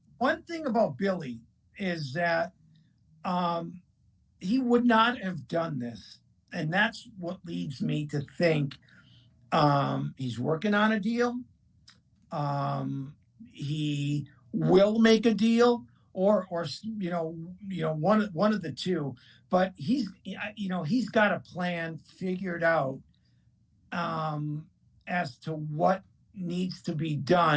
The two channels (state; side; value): identical; both; correlation 1.00